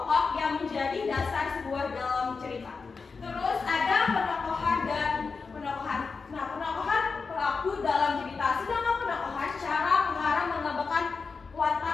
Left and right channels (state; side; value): quieter; right; 4.8 dB